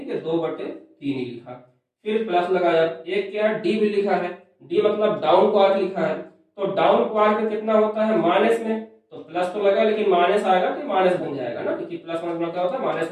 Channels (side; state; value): both; identical; correlation 1.00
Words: है, 2/3 ही लिखा, फिर प्लस लगाया, एक क्या है, डी भी लिखा है, डी मतलब डाउन क्वार्क लिखा है, तो डाउन क्वार्क में कितना होता है, माइनस में, तो प्लस तो लगा लेकिन माइनस आएगा तो माइनस बन जाएगा ना, क्योंकि प्लस माइनस क्या होता है, माइनस